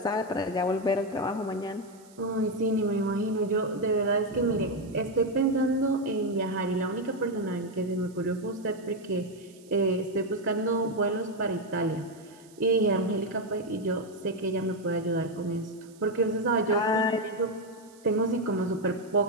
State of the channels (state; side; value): noise; right; hiss, 26 dB below the sound